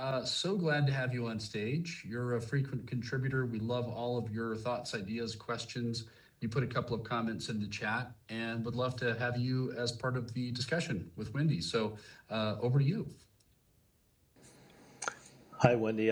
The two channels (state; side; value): identical; both; correlation 1.00